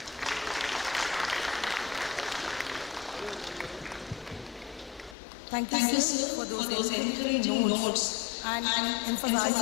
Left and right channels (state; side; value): drops out; right; at 5.2 s